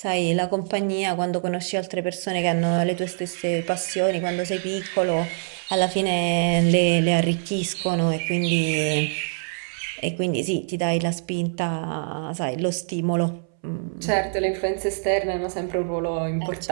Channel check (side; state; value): left; silent; 62 dB below the other